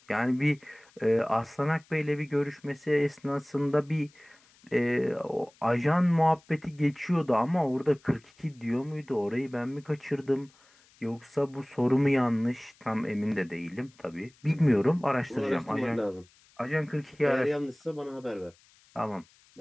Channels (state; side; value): noise; left; hiss, 30 dB below the sound